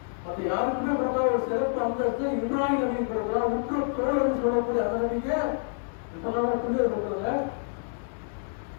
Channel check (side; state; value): right; silent; digital silence